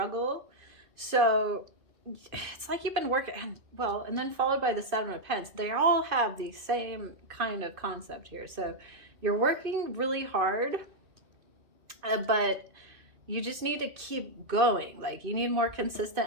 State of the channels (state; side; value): late; left; 2.5 ms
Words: So it's like you've been working, and then followed by the 7 of Pence. They all have the same kind of concept here. So you're working really hard, but you just need to keep going. Like you need more